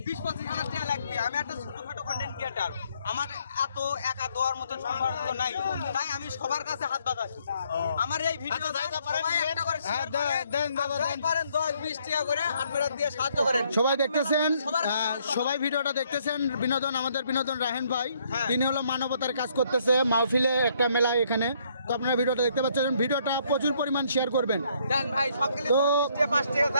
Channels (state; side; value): inverted; both; correlation -0.68